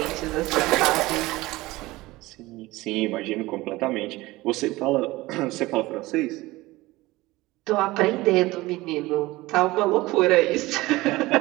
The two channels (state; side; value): quieter; left; 19.6 dB